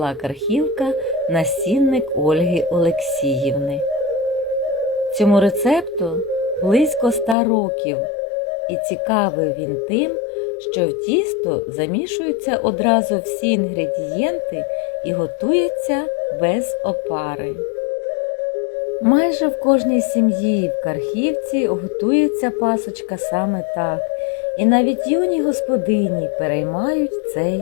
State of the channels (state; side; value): drops out; right; at 7.4 s